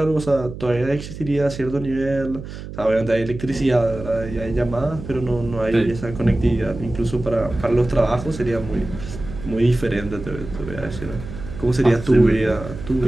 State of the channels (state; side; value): noise; right; hum, 11 dB below the sound